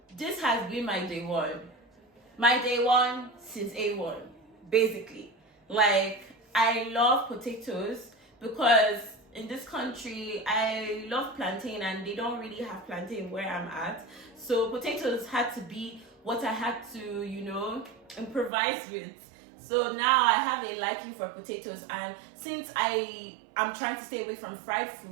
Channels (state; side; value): drops out; left; at 18.5 s